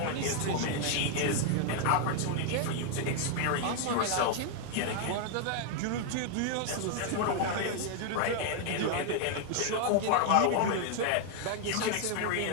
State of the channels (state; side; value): different; both; correlation 0.00